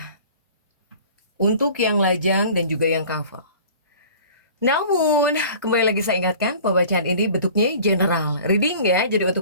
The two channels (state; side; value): inverted; both; correlation -0.45